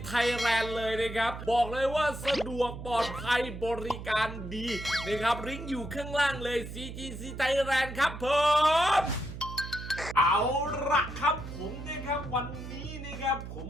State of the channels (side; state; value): right; noise; hum, 10 dB below the sound